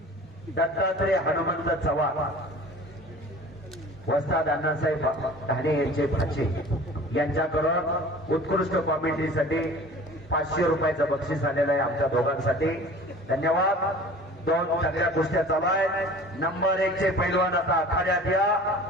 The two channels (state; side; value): normal; both; correlation 0.43